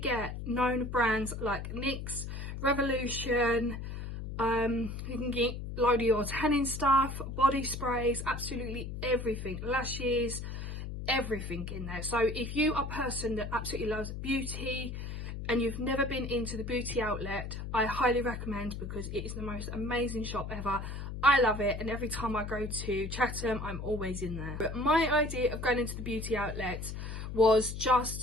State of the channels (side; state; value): left; noise; hum, 6 dB below the sound